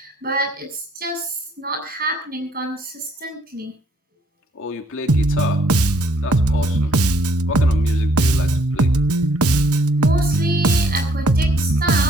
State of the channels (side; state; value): both; normal; correlation 0.65